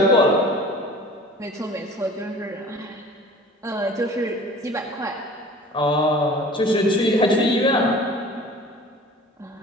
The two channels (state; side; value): normal; both; correlation 0.43